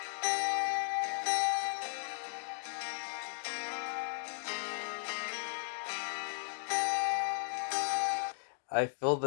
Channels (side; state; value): right; silent; digital silence